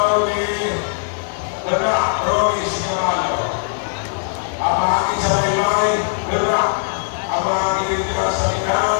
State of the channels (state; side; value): silent; right; digital silence